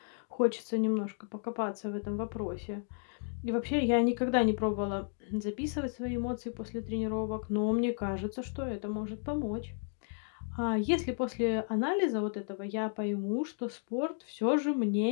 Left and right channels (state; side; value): silent; right; 56 dB below the other